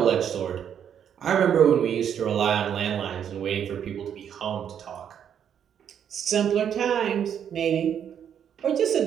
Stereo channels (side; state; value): left; quieter; 8.7 dB